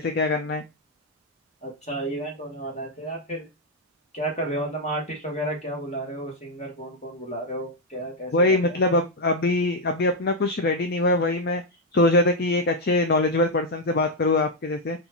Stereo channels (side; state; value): both; normal; correlation 0.01